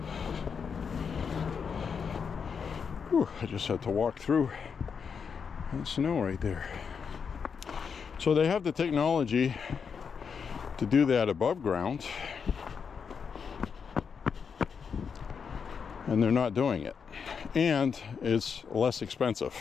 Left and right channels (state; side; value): quieter; right; 6.3 dB